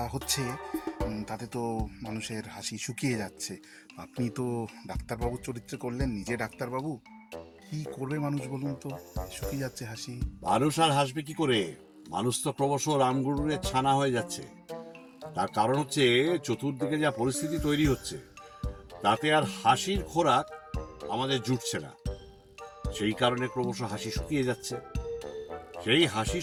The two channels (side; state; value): both; identical; correlation 1.00